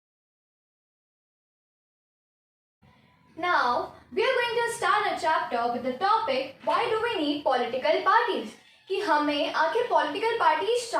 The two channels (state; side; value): identical; both; correlation 1.00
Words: Now we are going to start a chapter with the topic why do we need political parties, कि हमें आखिर पॉलिटिकल पार्टीज